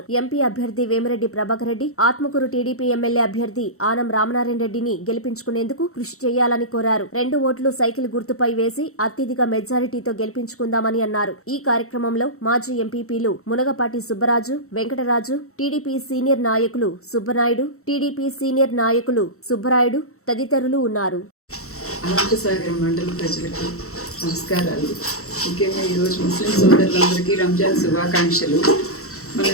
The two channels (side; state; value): right; late; 0.64 ms